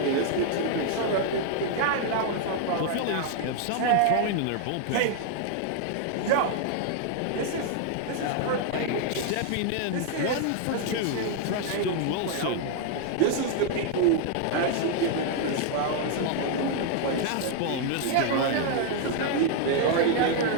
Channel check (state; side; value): different; both; correlation 0.00